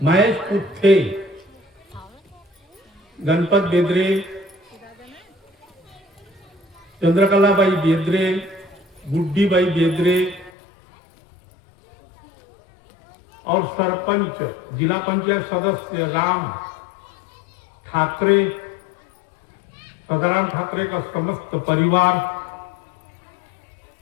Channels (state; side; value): drops out; right; at 10.5 s